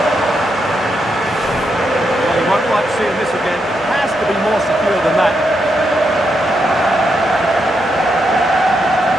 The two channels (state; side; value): normal; both; correlation 0.82